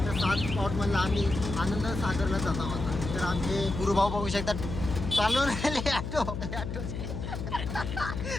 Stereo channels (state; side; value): noise; left; hum, 5 dB below the sound